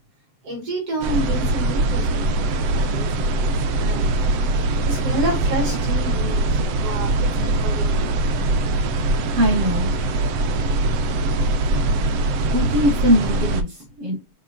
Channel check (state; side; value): late; left; 7.8 ms